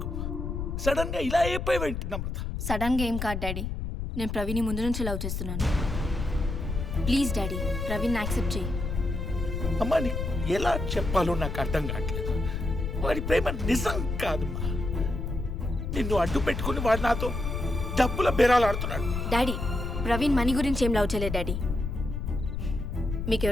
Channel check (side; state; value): left; noise; rumble, 3 dB below the sound